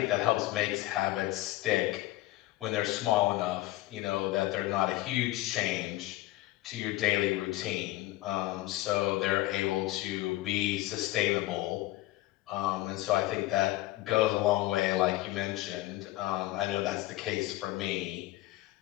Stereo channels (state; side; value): quieter; right; 17.3 dB